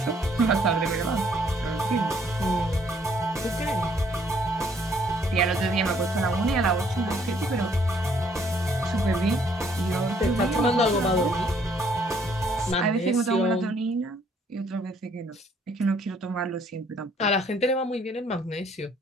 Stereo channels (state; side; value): normal; both; correlation 0.65